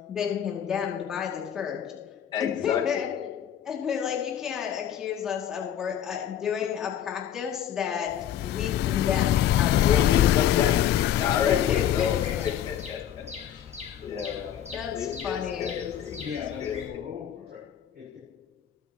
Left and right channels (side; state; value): right; quieter; 10.1 dB